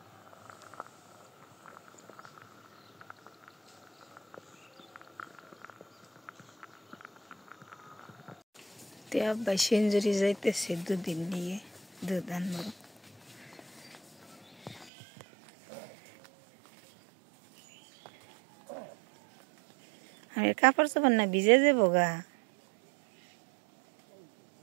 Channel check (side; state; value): left; drops out; at 14.9 s